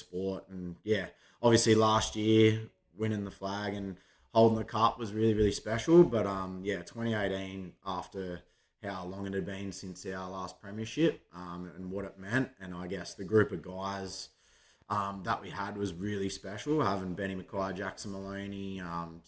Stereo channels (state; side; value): identical; both; correlation 1.00